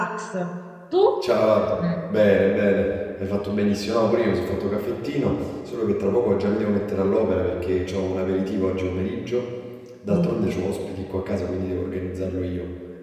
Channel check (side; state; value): both; identical; correlation 1.00